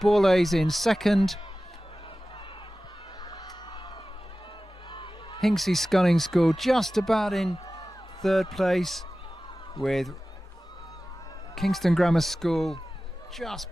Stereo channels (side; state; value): both; normal; correlation 0.96